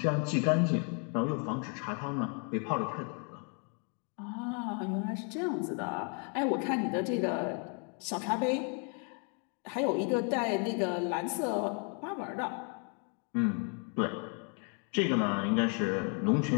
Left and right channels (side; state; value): right; quieter; 39.4 dB